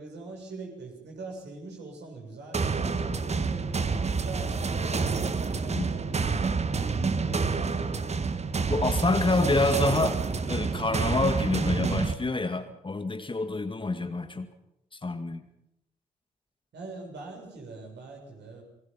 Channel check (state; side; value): normal; both; correlation 0.65